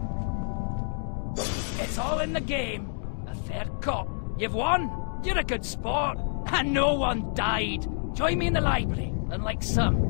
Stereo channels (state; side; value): silent; right; digital silence